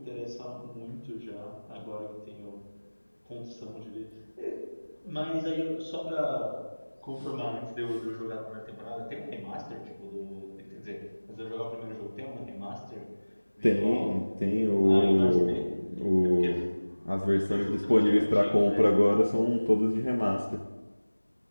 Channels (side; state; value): both; inverted; correlation -1.00